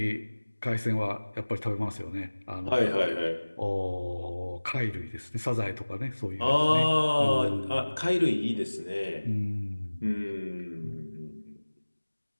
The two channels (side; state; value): both; inverted; correlation -1.00